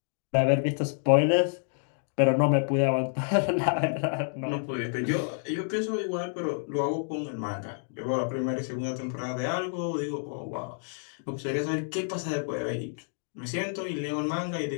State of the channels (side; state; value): right; silent; digital silence